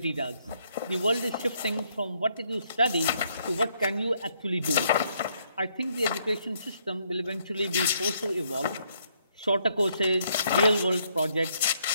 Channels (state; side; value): inverted; both; correlation -0.72